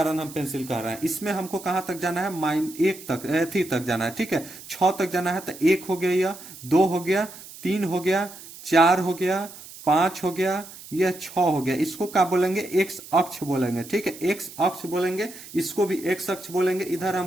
हम पेंसिल कर रहे हैं। इसमें हमको कहां तक जाना है, -1 तक, थी तक जाना है, ठीक है। 6 तक जाना है, तो 1 हो गया, यह 2 हो गया, 3 हो गया, 4 हो गया, 5 हो गया, यह 6 हो गया। इसको क्या बोलेंगे, x अक्ष बोलेंगे, ठीक है, x अक्ष बोलेंगे, इसको भी x अक्ष बोलेंगे। इधर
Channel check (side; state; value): right; noise; hiss, 16 dB below the sound